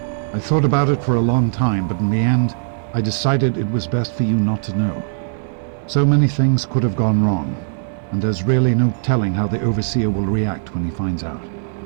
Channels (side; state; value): left; silent; 66 dB below the other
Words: I thought about it for a long time, but in the end, I decided it was best for you not to know. So many things could have gone wrong, and there's really no telling how the Overseer will react when he finds out.